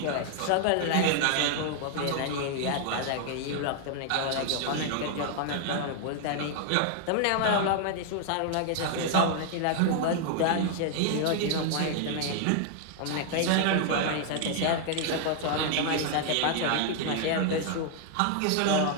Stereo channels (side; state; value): both; different; correlation 0.00